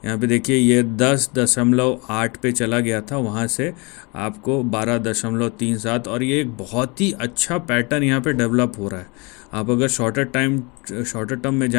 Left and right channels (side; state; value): right; quieter; 29.1 dB